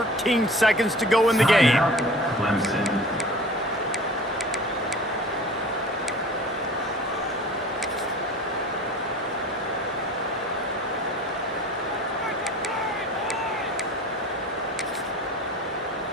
seconds to go in the game. Clemson.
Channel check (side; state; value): both; normal; correlation 0.42